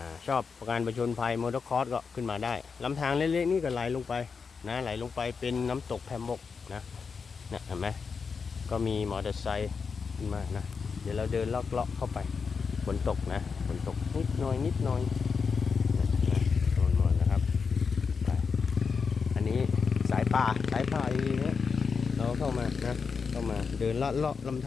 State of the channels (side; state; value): right; quieter; 5.4 dB